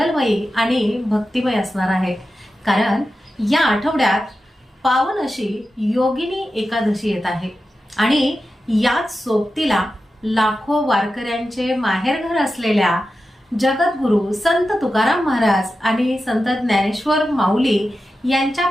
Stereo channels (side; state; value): both; normal; correlation 0.92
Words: आणि भक्तिमय असणार आहे, कारण या आठवड्यात पावन अशी योगिनी एकादशी येत आहे आणि याच सोबतीला लाखो वारकऱ्यांचे माहेरघर असलेल्या जगद्गुरु संत तुकाराम महाराज आणि संत ज्ञानेश्वर माऊली यांच्या